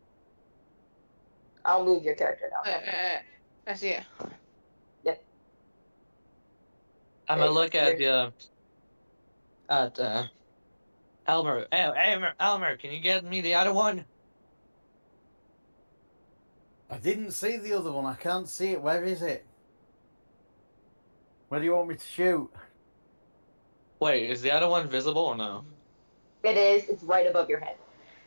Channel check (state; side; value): inverted; both; correlation -1.00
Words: I'll move your character down. I see it. Yep. I'm There gonna you go. look at the at Elmer, can you get me the other one? I didn't see the other one. I can't see it. Where is it? Where do you want me to shoot? Wait, is the other one visible or no? It is. It's right above your head.